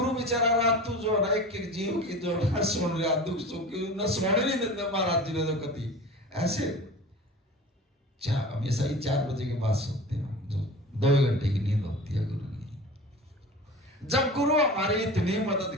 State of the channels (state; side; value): normal; both; correlation 0.36